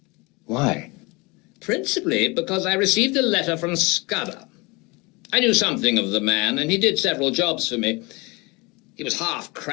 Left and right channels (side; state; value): right; quieter; 26.0 dB